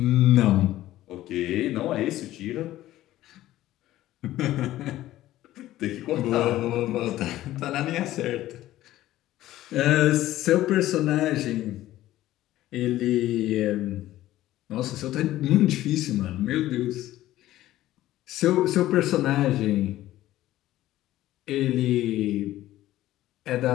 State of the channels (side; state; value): right; quieter; 14.8 dB